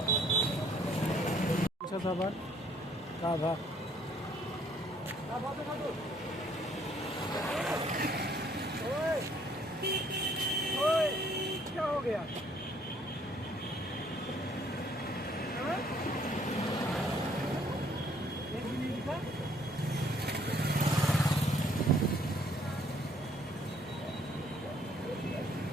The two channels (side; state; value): both; normal; correlation 0.63